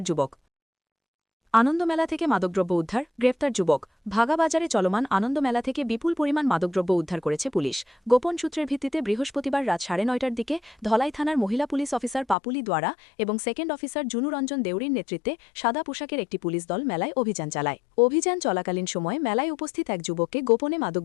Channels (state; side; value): drops out; right; at 12.4 s